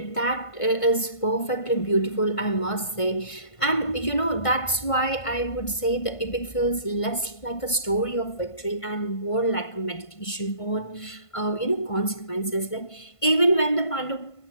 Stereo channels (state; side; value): late; right; 1.5 ms